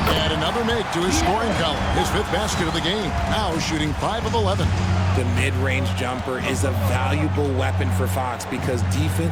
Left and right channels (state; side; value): identical; both; correlation 1.00